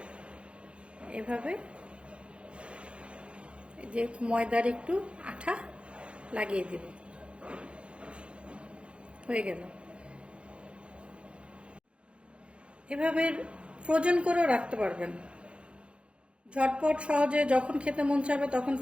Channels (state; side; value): late; left; 0.059 ms